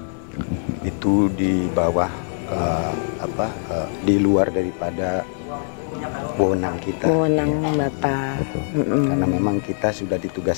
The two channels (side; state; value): right; silent; digital silence